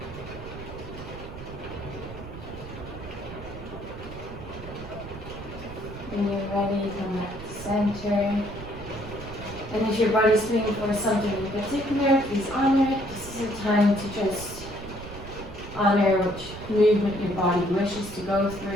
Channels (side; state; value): right; noise; rumble, 12 dB below the sound